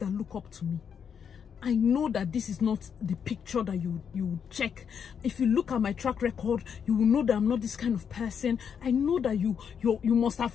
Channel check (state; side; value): quieter; right; 7.4 dB